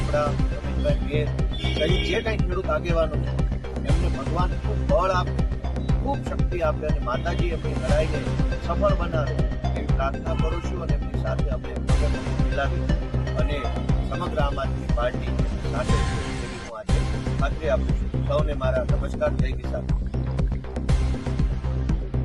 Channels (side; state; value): both; identical; correlation 1.00